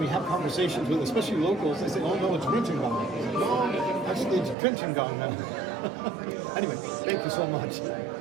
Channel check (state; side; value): drops out; left; at 4.5 s